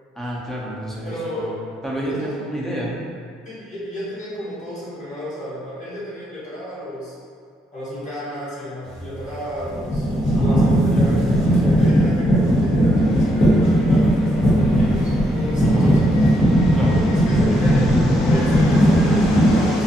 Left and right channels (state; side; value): normal; both; correlation 0.78